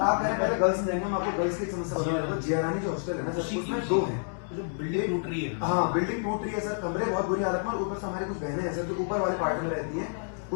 आप कह रहे हैं पहले गर्ल्स में जाएंगे, हम आपको गर्ल्स की एक समस्या बता रहे हैं। जियारानी जो हॉस्टल है ना सर, उसमें 2 हैं। जो बिल्डिंग टूट रही है, हाँ बिल्डिंग टूट रही है सर, कमरे बहुत बुरी हालत में, और ऊपर से हमारी कुछ बहनें हैं सर जो ऊपर वाले पार्ट में रहती हैं,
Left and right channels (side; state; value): right; silent; digital silence